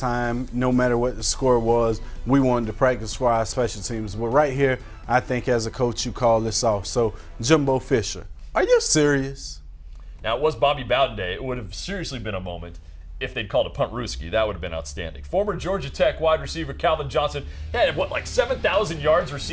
No matter what the score was, we wanted to practice for our special teams. But right here, I think as a coach, you call this off. So, Jimbo Fisher, are you serious? Now, it was Bobby Bowden Day. It would have seriously been a moment if they'd called a punt Ruski. That would have been outstanding. Former Georgia Tech wide receiver Calvin Johnson had, like 7,000 yards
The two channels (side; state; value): both; identical; correlation 1.00